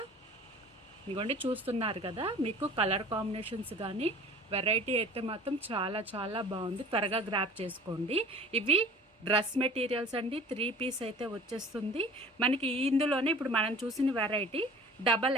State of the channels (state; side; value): normal; both; correlation 0.44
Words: ఇదిగోండి చూస్తున్నారు కదా, మీకు కలర్ కాంబినేషన్స్ కానీ వెరైటీ అయితే మాత్రం చాలా చాలా బాగుంది. త్వరగా గ్రాప్ చేసుకోండి. ఇవి డ్రెస్ మెటీరియల్స్ అండి, 3 పీస్ అయితే వచ్చేస్తుంది మనకి. ఇందులోనే ఇప్పుడు మనం చూసిన వెరైటీ